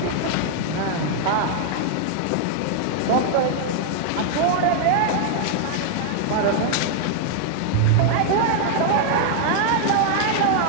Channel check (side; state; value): both; different; correlation -0.01